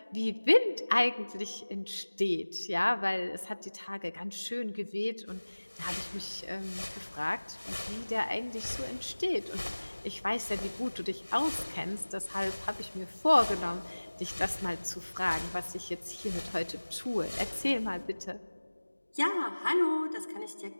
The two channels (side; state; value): both; inverted; correlation -1.00